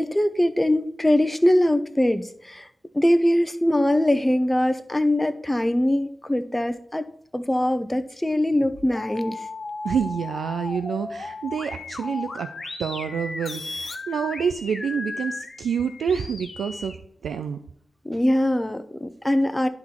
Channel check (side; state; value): both; normal; correlation 0.94